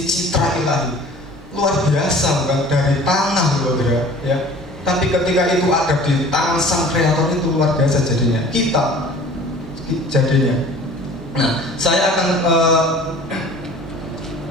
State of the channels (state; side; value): normal; both; correlation 0.46